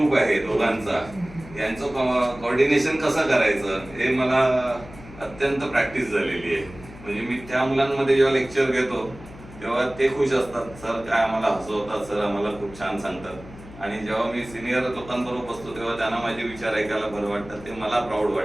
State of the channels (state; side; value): noise; left; hum, 18 dB below the sound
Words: आहे दोघांचा, यांचं कोऑर्डिनेशन कसं करायचं हे मला अत्यंत प्रॅक्टिस झालेली आहे. म्हणजे मी त्या मुलांमध्ये जेव्हा लेक्चर घेतो तेव्हा ते खुश असतात, सर काय आम्हाला हसवतात, सर आम्हाला खूप छान सांगतात. आणि जेव्हा मी सिनियर लोकांबरोबर बसतो तेव्हा त्यांना माझे विचार ऐकायला बरं वाटतं. ते मला प्राऊड